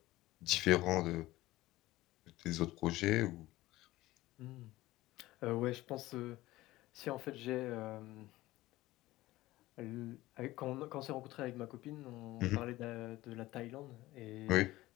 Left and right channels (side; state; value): right; quieter; 17.5 dB